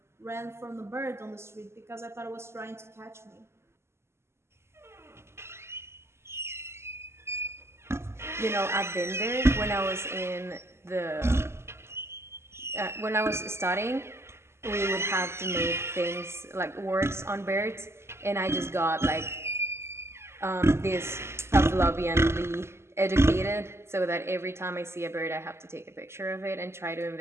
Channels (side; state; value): left; late; 0.12 ms